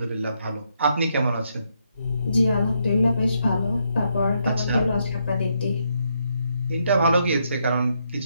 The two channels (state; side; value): inverted; both; correlation -0.77